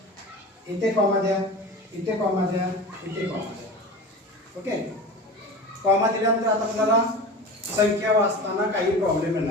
इथे कॉमा द्या, इथे कॉमा द्या, इथे कॉमा द्या. ओके, कॉमा दिल्यानंतर आता आपल्याला संख्या वाचताना काही प्रॉब्लेम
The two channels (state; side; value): normal; both; correlation 0.32